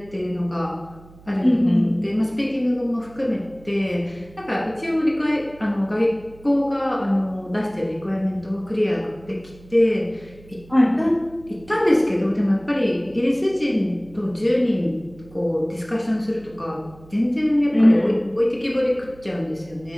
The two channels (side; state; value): right; noise; hum, 23 dB below the sound